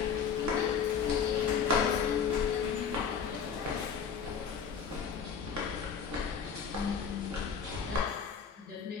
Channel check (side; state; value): right; quieter; 6.7 dB